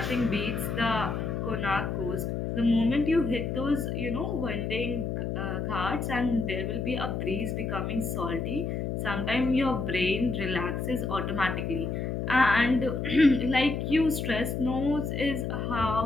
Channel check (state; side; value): noise; left; hum, 2 dB below the sound